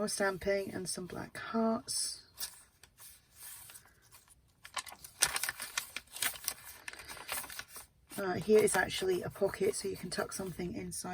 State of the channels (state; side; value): identical; both; correlation 1.00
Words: stamping and some black hearts. Here is actually a pocket, so you can tuck something